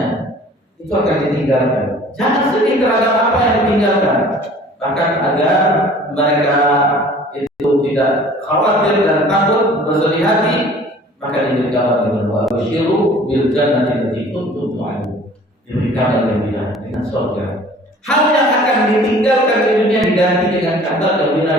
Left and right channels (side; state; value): both; normal; correlation 0.49